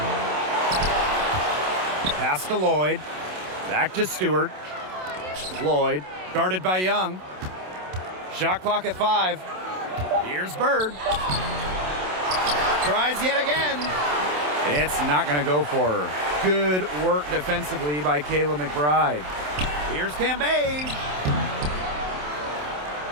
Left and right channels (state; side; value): late; left; 27 ms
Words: Pass to Lloyd. Back to Stewart. Lloyd, guarded by Young. Shot clock at 5. Here's Bird. Tries yet again. It's not going to go for her. Good work defensively by Kayla McBride. Here's Cambage.